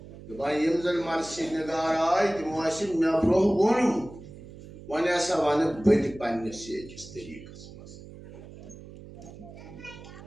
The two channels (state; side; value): noise; right; hum, 16 dB below the sound